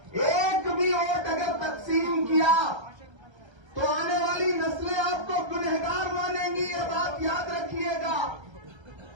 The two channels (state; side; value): late; left; 1.3 ms